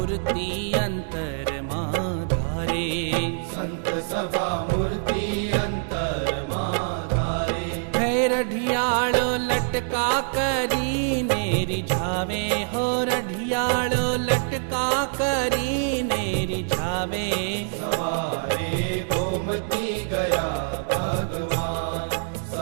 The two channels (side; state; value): left; silent; digital silence